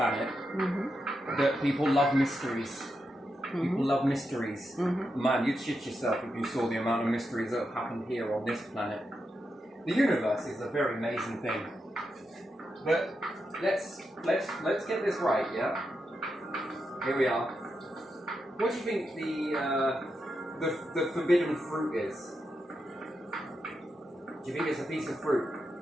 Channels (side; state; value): both; normal; correlation 0.86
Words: that people love mysteries. People love mysteries. Man, you'd shit yourself if you saw the amount of mysteries that have happened here on this planet. The universe is a very amazing thing. But let's get this right, yeah? Here we are. What do you think the forbidden fruit is? Do you think it's a piece of fruit?